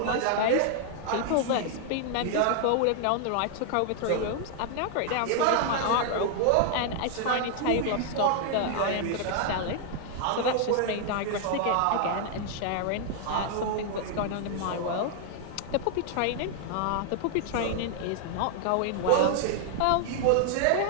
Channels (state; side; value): different; both; correlation 0.00